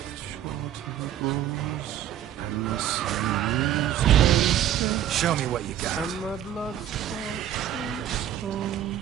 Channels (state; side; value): quieter; left; 11.2 dB